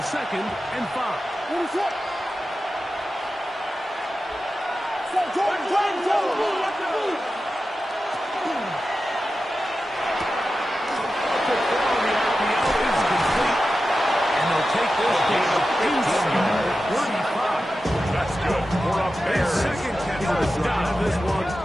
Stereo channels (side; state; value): both; normal; correlation 0.92